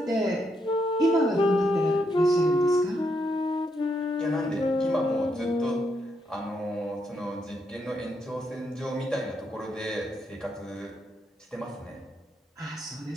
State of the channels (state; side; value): normal; both; correlation 0.78